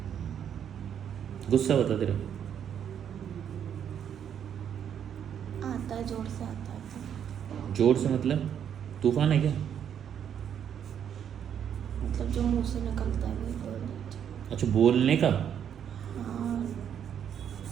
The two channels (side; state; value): left; quieter; 8.8 dB